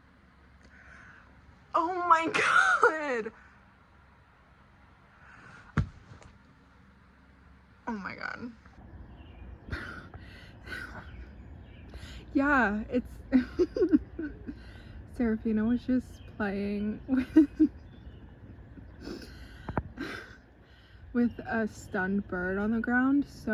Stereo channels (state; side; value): identical; both; correlation 1.00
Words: Oh my god. Oh my god. Yeah, it's Serafina was just playing with a stunned bird on the ground,